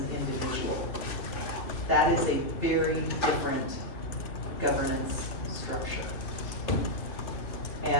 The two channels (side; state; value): right; late; 2.6 ms